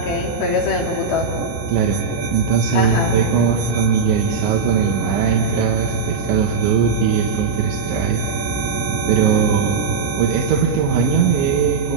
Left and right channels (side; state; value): left; quieter; 5.0 dB